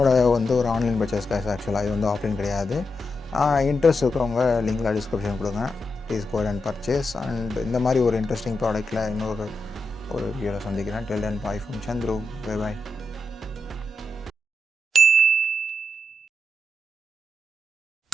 வந்து ஒரு ஆன்லைன் பர்ச்சேஸ் காசு ஆக்சுவலாக, இது வந்து ஆஃப்லைன் கிடையாது. இன்ட்ரெஸ்ட் இருக்கிறவங்க லிங்கில் டிஸ்கிரிப்ஷன் கொடுங்க, please go and purchase. And இந்த மாதிரி ஒரு இன்ட்ரெஸ்டிங் ப்ராடக்ட்டில் இன்னொரு வீடியோவில் சந்திக்கிறேன். Till then, bye from Chandru. Bye bye.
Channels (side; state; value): both; normal; correlation 0.85